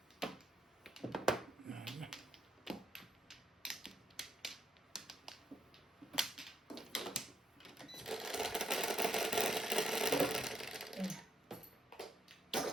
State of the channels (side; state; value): both; normal; correlation 0.77